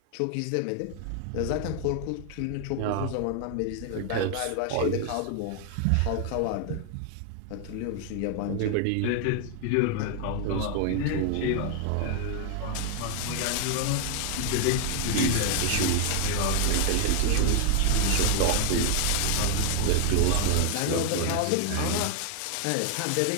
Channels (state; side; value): different; both; correlation 0.00